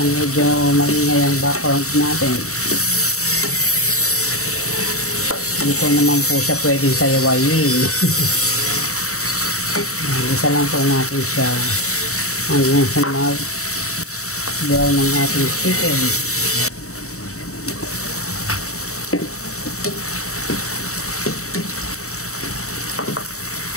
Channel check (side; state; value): right; late; 0.64 ms